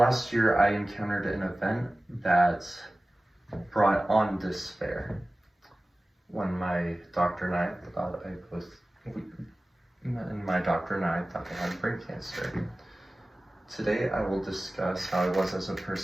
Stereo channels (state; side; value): normal; both; correlation 0.97